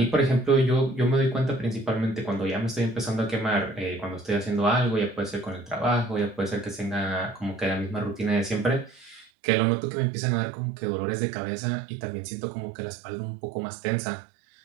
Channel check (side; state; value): left; drops out; at 9.2 s